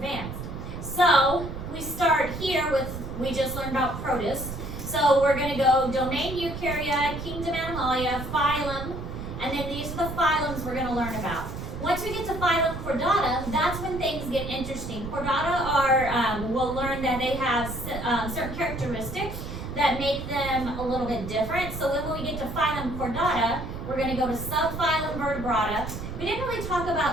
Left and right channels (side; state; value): right; noise; rumble, 8 dB below the sound